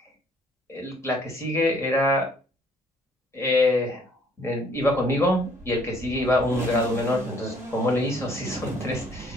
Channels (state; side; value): normal; both; correlation 0.61